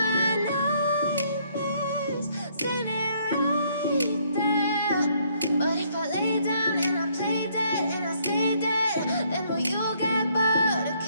my nightmares, standing right there. But if I lay down and I play dead and I stay dead, then will you get bored of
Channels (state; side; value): inverted; both; correlation -0.68